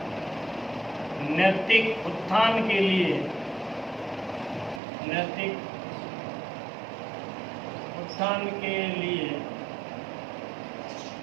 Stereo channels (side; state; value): left; drops out; at 4.8 s